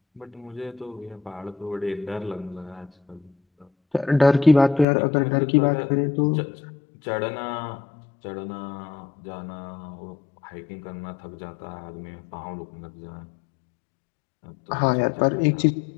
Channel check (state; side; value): drops out; right; at 4.9 s